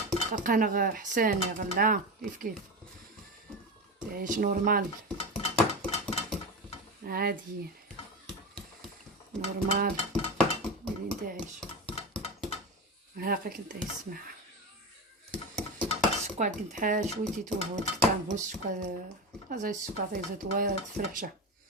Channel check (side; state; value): both; normal; correlation 0.22